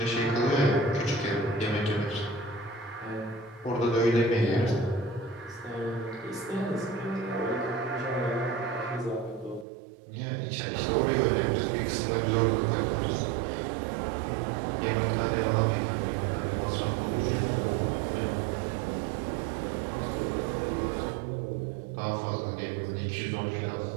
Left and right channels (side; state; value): left; drops out; at 9.7 s